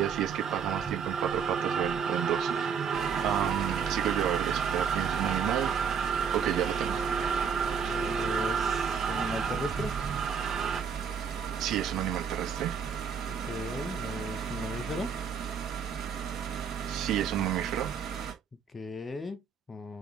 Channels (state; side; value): quieter; left; 6.7 dB